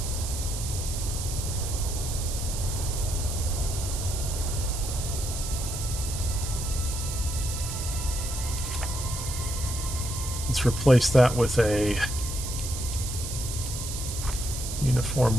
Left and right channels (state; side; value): noise; right; hiss, 6 dB below the sound